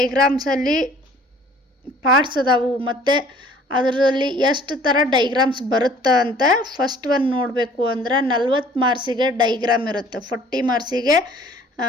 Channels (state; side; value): normal; both; correlation 0.53